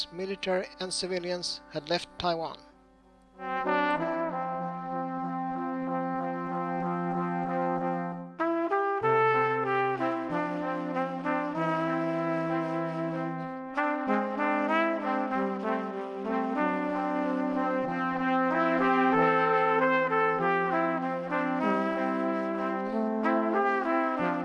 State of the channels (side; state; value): both; identical; correlation 1.00